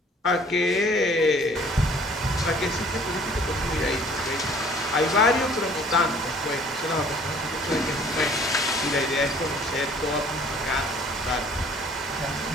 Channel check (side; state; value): both; normal; correlation 0.54